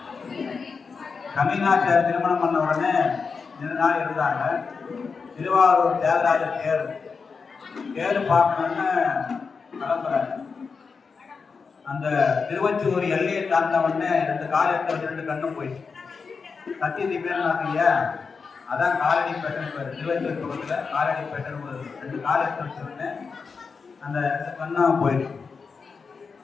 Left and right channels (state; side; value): quieter; right; 5.1 dB